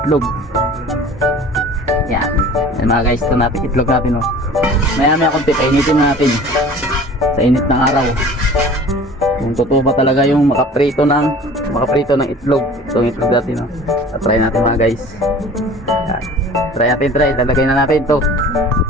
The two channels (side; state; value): both; normal; correlation 0.44